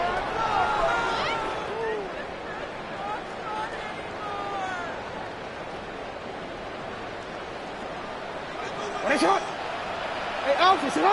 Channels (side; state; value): both; identical; correlation 1.00